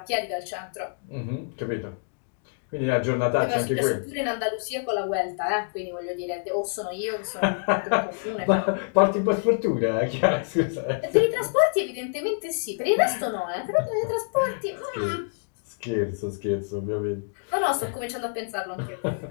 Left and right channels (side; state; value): right; silent; digital silence